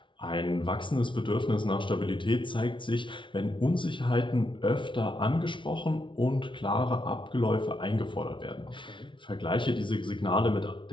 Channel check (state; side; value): late; right; 0.24 ms